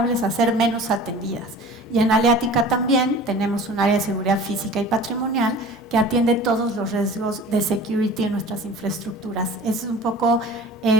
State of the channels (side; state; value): both; normal; correlation 0.41